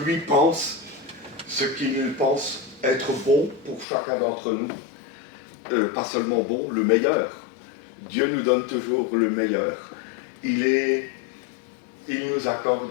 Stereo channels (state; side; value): drops out; right; at 3.9 s